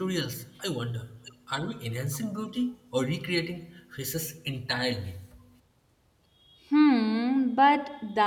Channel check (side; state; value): both; identical; correlation 1.00